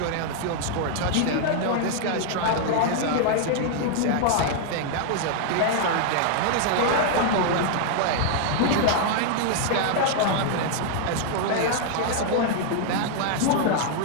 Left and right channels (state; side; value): different; both; correlation 0.00